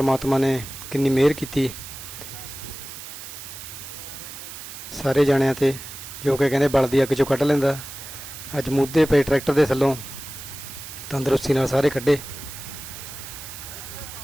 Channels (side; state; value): right; noise; hiss, 12 dB below the sound